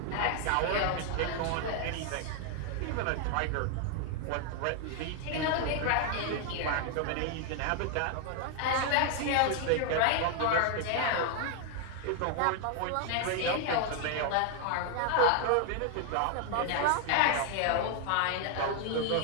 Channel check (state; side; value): different; both; correlation 0.00